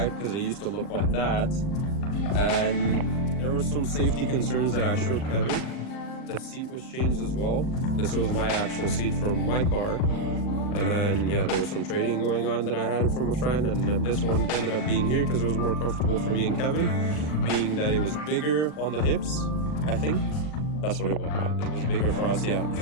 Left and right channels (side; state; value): right; late; 39 ms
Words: because it used to look like that, and there were some safety concerns that I showed Kevin. The seat was changed as well. This was my actual seat from my car. And then, there was some trading going on that I had from a friend, and then this one ended up being here because it was more comfortable for me and Kevin, being that it was bigger on the hips, I think. That's what it was. It was bigger for us, So